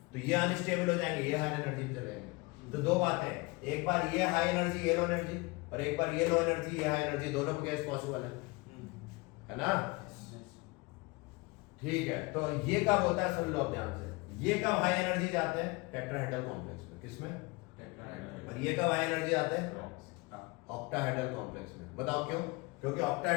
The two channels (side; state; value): right; quieter; 25.4 dB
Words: तो ये अनस्टेबल हो जाएंगे, ये हाई एनर्जी पे चले जाएंगे। तो दो बातें, एक बार ये हाई एनर्जी, ये लो एनर्जी, और एक बार ये लो एनर्जी, ये हाई एनर्जी, दोनों केस पॉसिबल है ना? ठीक है, तो ये कब होता है, सुन लो अब ध्यान से, ये कब हाई एनर्जी जाते हैं, टेट्राहेड्रल कॉम्प्लेक्स में, किसमें? और ये कब हाई एनर्जी आते हैं, ऑक्टाहेड्रल कॉम्प्लेक्स में। बताओ क्यों? क्योंकि